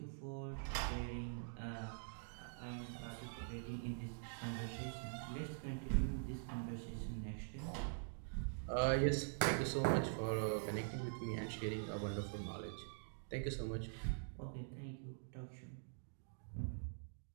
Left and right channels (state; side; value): silent; left; digital silence